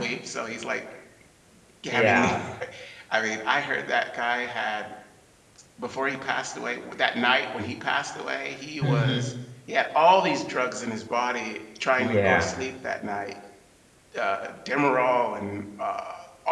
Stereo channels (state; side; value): identical; both; correlation 1.00